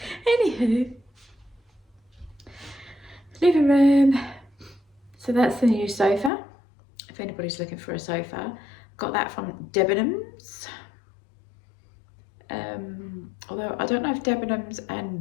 Anywho, living room. So that's the new sofa. If anybody's looking for a sofa, got that from Debenhams. Although I don't know if Debenhams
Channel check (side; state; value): right; drops out; at 6.3 s